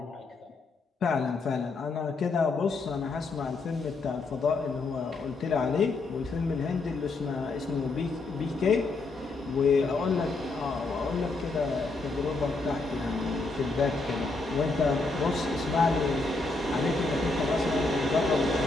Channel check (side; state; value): right; quieter; 3.6 dB